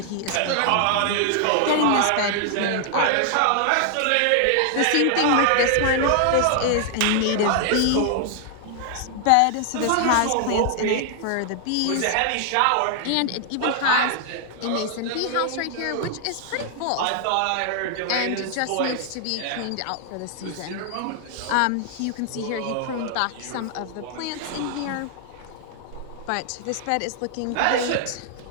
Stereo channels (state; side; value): different; both; correlation 0.00